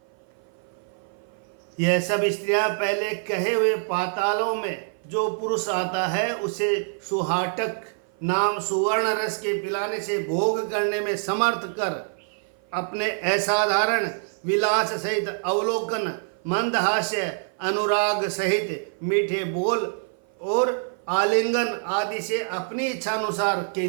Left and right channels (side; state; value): left; silent; 55 dB below the other